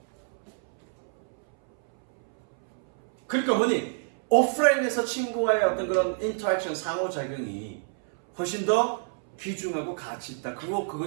그러니까 뭐니? 오프라인에서 친구와의 어떤 그런 인터랙션, 상호작용이 훨씬 더 귀중하고 가치 있다.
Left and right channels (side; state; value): left; silent; 60 dB below the other